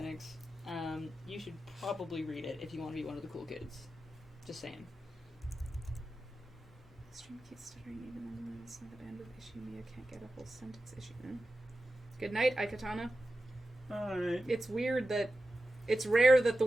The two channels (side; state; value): both; normal; correlation 0.92